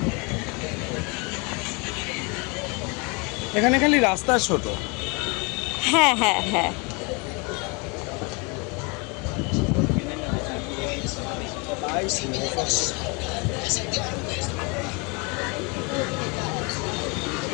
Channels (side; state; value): right; quieter; 30.4 dB